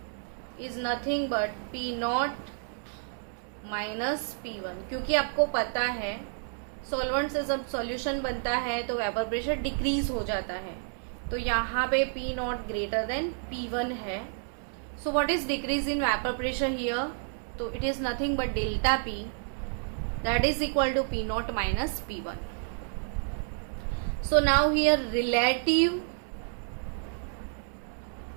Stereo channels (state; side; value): silent; left; 58 dB below the other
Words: is nothing but P naught minus P1, क्योंकि आपको पता है solvent से जब सॉल्यूशन बनता है तो वेपर प्रेशर डिक्रीज हो जाता है. तो यहाँ पे P not greater than P1 है. So what is decrease in vapour pressure here? तो it is nothing but delta P that is equal to P naught minus P1. So now here relative